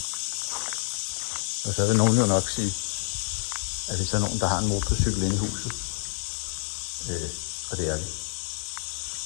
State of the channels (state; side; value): silent; right; 59 dB below the other